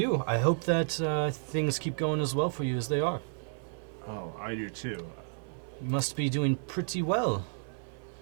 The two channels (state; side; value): silent; left; digital silence